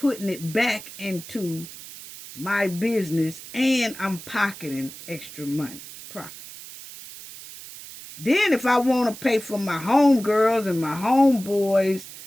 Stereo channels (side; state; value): right; noise; hiss, 15 dB below the sound